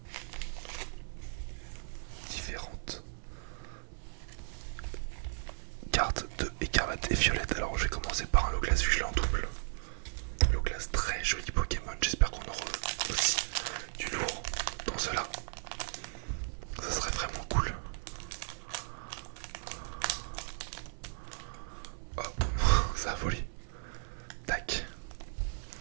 différentes cartes de écarlate et violette. Alors je vais commencer par un Loglas vu que je l'ai en double. Loglas, très joli Pokémon. J'espère qu'on aura aussi du lourd dans cela. Ça serait vraiment cool. Hop, ça a volé. Tac.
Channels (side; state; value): left; silent; 54 dB below the other